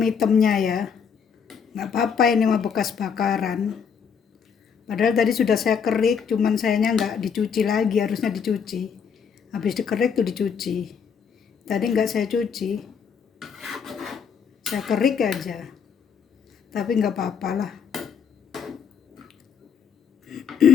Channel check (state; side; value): quieter; right; 6.9 dB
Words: ya. Nggak apa-apa, ini mah bekas bakaran. Padahal tadi sudah saya kerik, cuman sayangnya nggak dicuci lagi, harusnya dicuci. Habis dikerik tuh dicuci. Tadi nggak saya cuci. Saya kerik aja. Tapi nggak apa-apa lah.